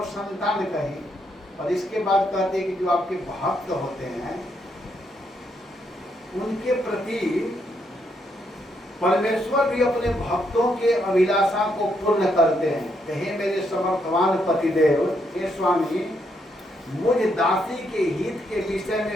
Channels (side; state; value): both; normal; correlation 0.77